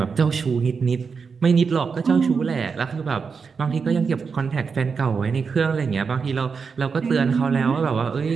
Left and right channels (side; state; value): left; quieter; 5.5 dB